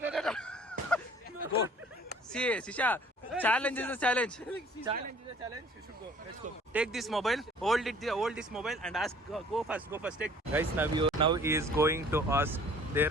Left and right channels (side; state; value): both; normal; correlation 0.53